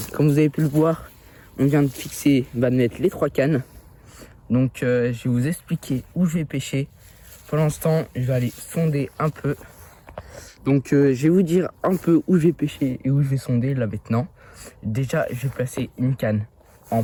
comme vous avez pu le voir, on vient de fixer, de mettre les 3 cannes. Donc je vais vous expliquer où je vais pêcher. Pour l'instant, je vais aller sonder un peu. Donc je vais vous dire un peu où je vais pêcher et où je vais sonder là maintenant. Déjà, je vais placer une canne en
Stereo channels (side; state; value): both; identical; correlation 1.00